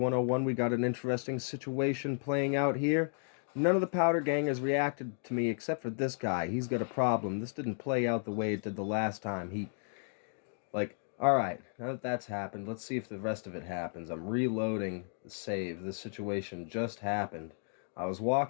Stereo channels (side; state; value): right; silent; 55 dB below the other